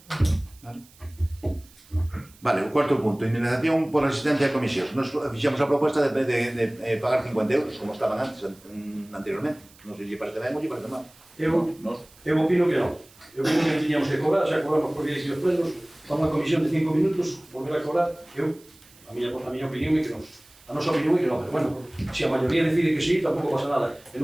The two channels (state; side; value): noise; right; hiss, 26 dB below the sound